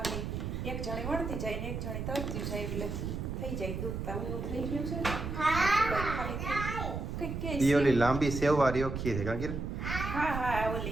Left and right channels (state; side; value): noise; right; rumble, 4 dB below the sound